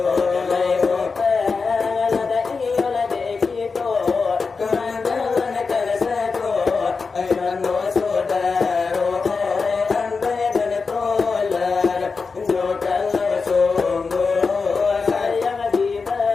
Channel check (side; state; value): right; quieter; 4.7 dB